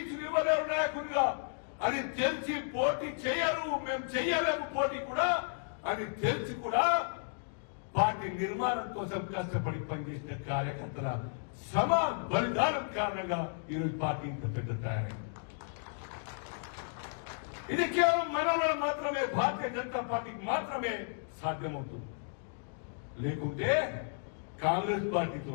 ఇవ్వలేరు నాయకులుగా. అది తెలిసి పోటీ చేయరు, మేము చెయ్యలేము పోటీ కూడా అని తెలిసి కూడా పార్టీ నిర్మాణం కోసం కష్టపడి పనిచేసిన కార్యకర్తల సమ బలిదానం కారణంగా ఈరోజు పార్టీ ఇంత పెద్ద తయారైంది. ఇది కేవలం మన మాత్రమే, భారతీయ జనతా పార్టీకి మాత్రమే సాధ్యమవుతుంది. లేకుంటే కాంగ్రెస్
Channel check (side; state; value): right; silent; digital silence